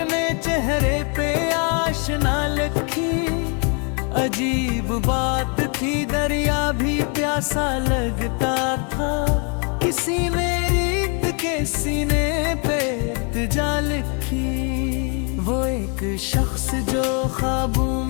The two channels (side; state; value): right; quieter; 37.3 dB